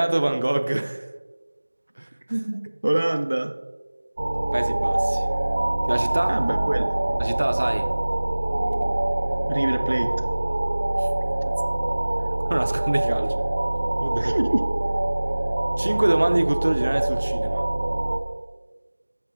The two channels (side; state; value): both; inverted; correlation -1.00